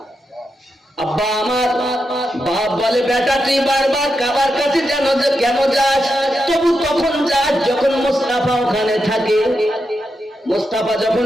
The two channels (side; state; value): both; normal; correlation 0.86